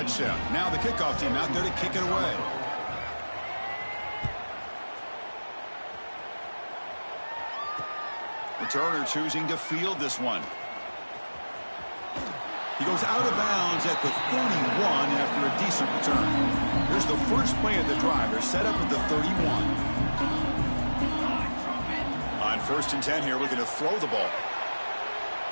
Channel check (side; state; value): both; inverted; correlation -1.00